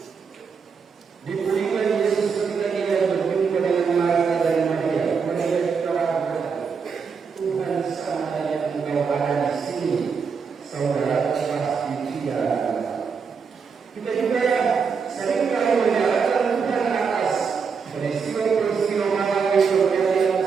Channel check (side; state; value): left; quieter; 5.8 dB